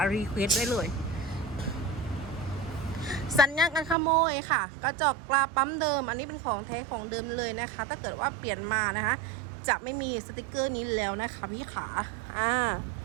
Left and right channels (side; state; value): left; drops out; at 4.0 s